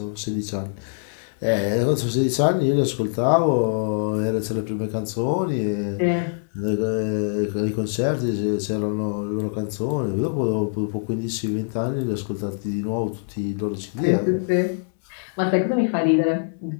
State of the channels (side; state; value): right; silent; digital silence